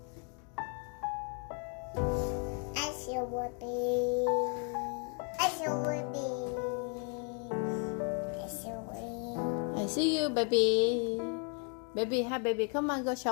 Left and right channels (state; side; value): quieter; right; 39.8 dB